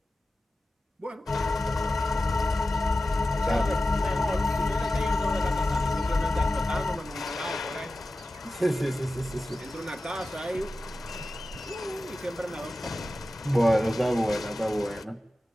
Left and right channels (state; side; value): normal; both; correlation 0.94